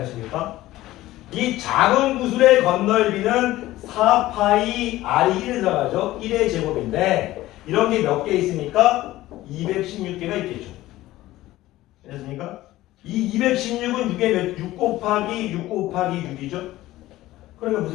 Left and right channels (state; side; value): quieter; right; 16.3 dB